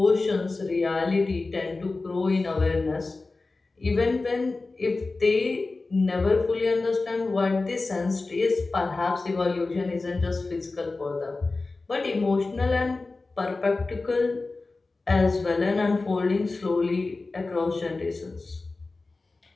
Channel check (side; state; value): right; quieter; 3.6 dB